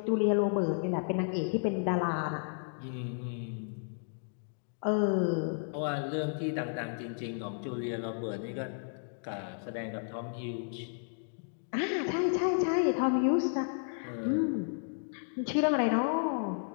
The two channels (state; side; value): silent; right; digital silence